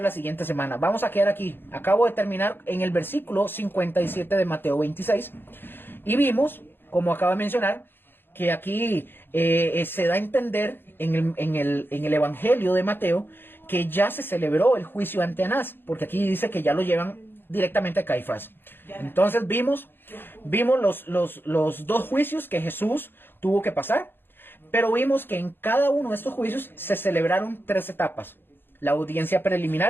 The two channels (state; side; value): late; right; 0.10 ms